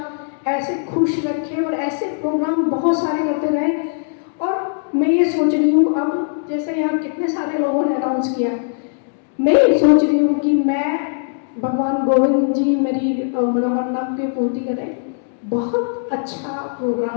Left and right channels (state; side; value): silent; right; digital silence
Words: ऐसे खुश रखे और ऐसे प्रोग्राम बहुत सारे करते रहे। और मैं ये सोच रही हूँ, अब जैसे यहाँ कितने सारे लोगों ने अनाउंस किया, मैं ये सोच रही हूँ कि मैं भगवान गोविंद जी मेरी मनोकामना की पूर्ति करें। बहुत अच्छा